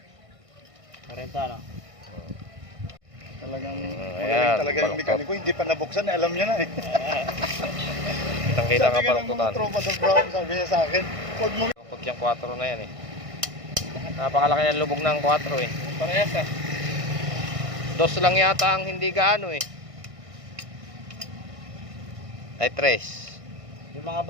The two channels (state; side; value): late; left; 1.6 ms